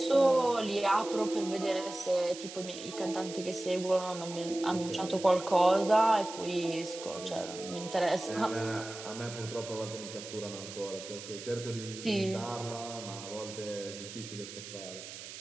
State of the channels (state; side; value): noise; right; hiss, 12 dB below the sound